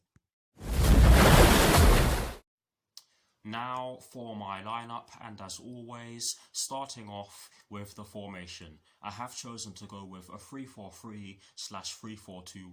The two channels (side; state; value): both; identical; correlation 1.00